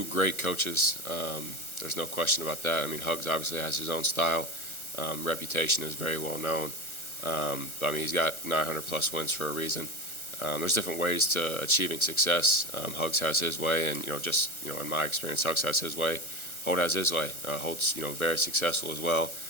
great coaches. There's no question about that. I mean, Hugs obviously has his own style. Reputation is very well known. But I mean, he's got 900 plus wins for a reason. There's different ways to achieving success. Hugs has his way, and in my experience, Hugs has his way. Holt has his way. Holt's very successful as well.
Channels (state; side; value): late; right; 1.3 ms